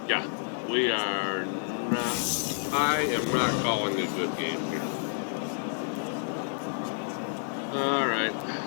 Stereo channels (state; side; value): silent; right; 58 dB below the other